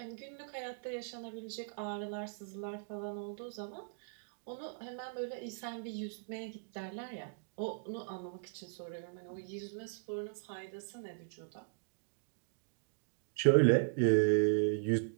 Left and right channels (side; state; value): left; silent; digital silence